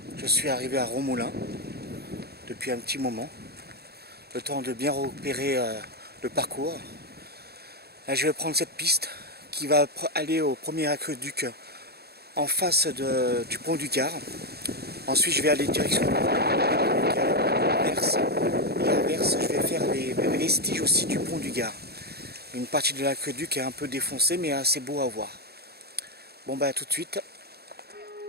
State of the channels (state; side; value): late; left; 0.46 ms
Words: je suis arrivé à Romoulin depuis un petit moment, le temps de bien repérer le parcours. Là je vais prendre cette piste qui va aller au premier aqueduc en face du pont du Gard. Ensuite je vais aller direction Verse et à Verse je vais faire les vestiges aussi du pont du Gard. Une partie de l'aqueduc est un peu défoncée mais assez beau à voir. Bon bah à tout de suite.